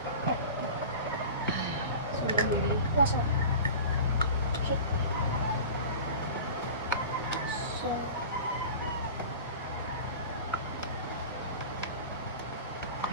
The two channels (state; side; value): inverted; both; correlation -0.36